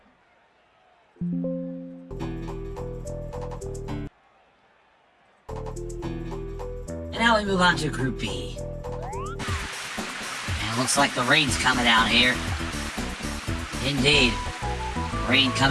And now we move on to Group B. And it looks like the rain's coming down here. Indeed. Rain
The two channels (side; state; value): both; identical; correlation 1.00